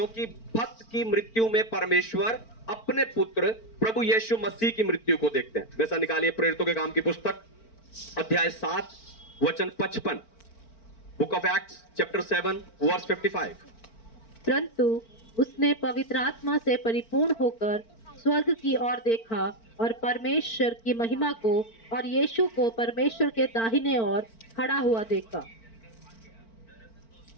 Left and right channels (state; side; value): late; right; 4.4 ms